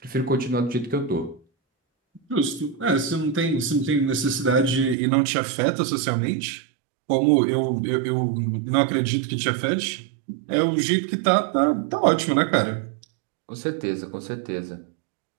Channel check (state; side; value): drops out; left; at 5.0 s